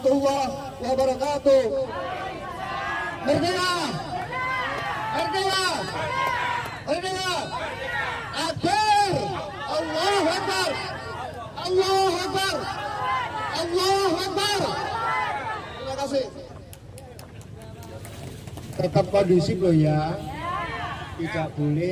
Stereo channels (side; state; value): both; identical; correlation 1.00